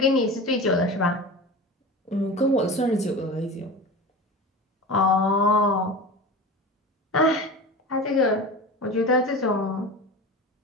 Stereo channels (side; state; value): both; normal; correlation 0.31